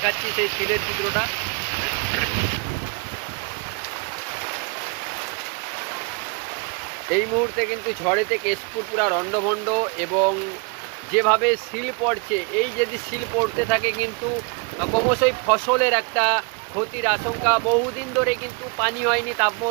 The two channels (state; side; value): quieter; left; 32.2 dB